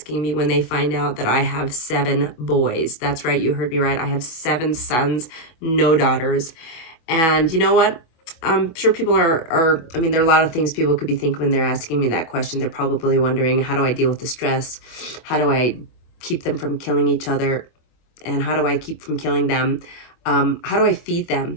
me when they find out that I have 7 boys. That's right, you heard me right. I have 7 sons, no daughters. And you know what? I'm sure people I mean, there are a lot of things people could be thinking when they're asking me that question. They're probably wondering, how do I deal with the stress? How do I keep them from killing each other? And how do I keep from killing them? How do I feed them,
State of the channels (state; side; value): late; right; 25 ms